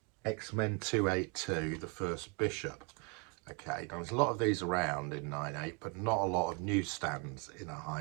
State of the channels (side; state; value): left; quieter; 33.6 dB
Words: 282, the first Bishop. Okay, now there's a lot of these around in 9.8, but not a lot of newsstands in a